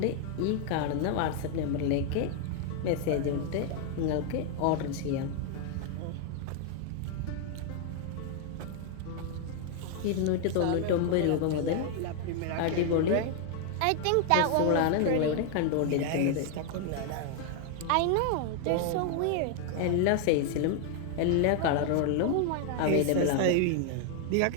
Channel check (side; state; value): both; different; correlation 0.00